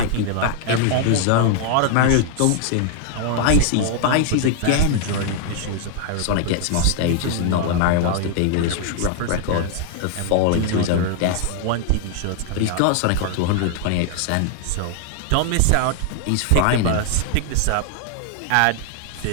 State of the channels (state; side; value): different; both; correlation 0.00